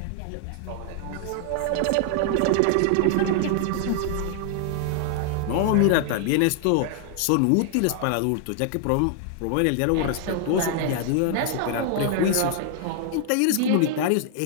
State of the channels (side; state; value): both; different; correlation 0.00